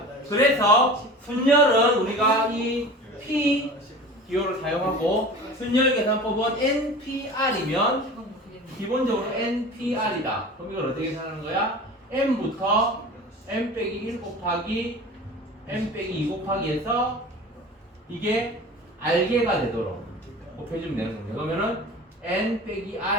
그래서 순열은 우리가 이 P 기호를 사용하고 순열 계산법은 NPR이면 기본적으로 NPR이다. 그럼 이걸 어떻게 계산하는 거야? M부터 M 빼기 1 곱하기 M 빼기 2 곱하기 해서 이게 R개가 되도록 곱해주면 되는 겁니다. 그러면은 N 빼기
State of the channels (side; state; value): both; normal; correlation 0.37